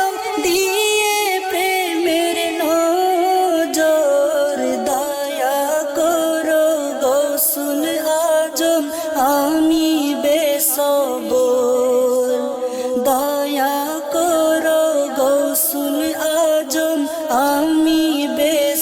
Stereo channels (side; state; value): both; identical; correlation 1.00